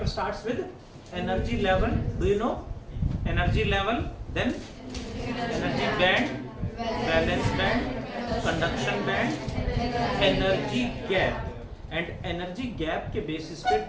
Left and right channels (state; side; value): identical; both; correlation 1.00